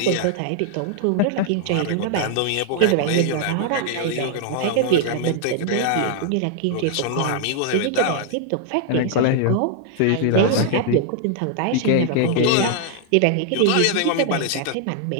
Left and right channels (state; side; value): different; both; correlation 0.00